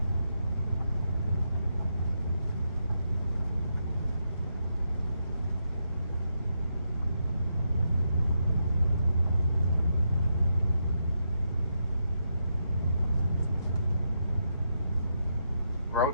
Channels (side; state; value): both; inverted; correlation -0.82